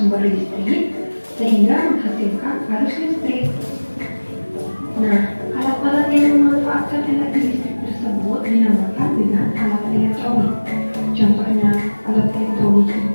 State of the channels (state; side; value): inverted; both; correlation -1.00